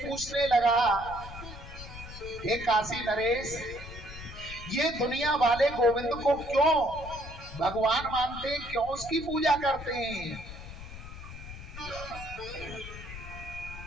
लगा, हे काशी नरेश, ये दुनिया वाले गोविंद को क्यों भगवान मानते हैं, क्यों उसकी पूजा करते हैं?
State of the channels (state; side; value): noise; left; rumble, 12 dB below the sound